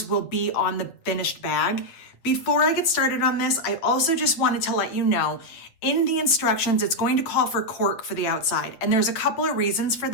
will be on the finished bag. Before I get started on this, I also just wanted to let you know, in the instructions, it's going to call for cork for the outside. And there's a couple of reasons for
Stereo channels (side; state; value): right; late; 8.8 ms